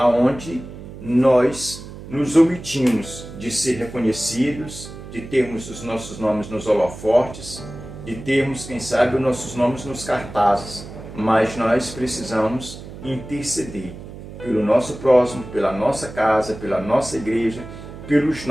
nós nos omitimos de ser reconhecidos, de termos os nossos nomes nos holofortes, de termos, quem sabe, os nossos nomes nos cartazes. Mas nós precisamos interceder pelo nosso próximo, pela nossa casa, pela nossa igreja, pelos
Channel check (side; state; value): right; noise; hum, 13 dB below the sound